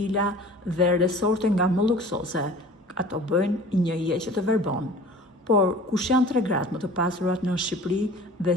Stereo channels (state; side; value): normal; both; correlation 0.44